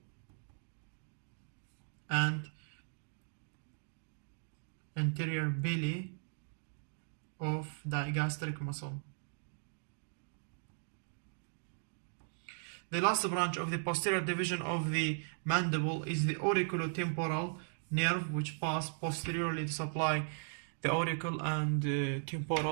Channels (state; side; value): silent; left; digital silence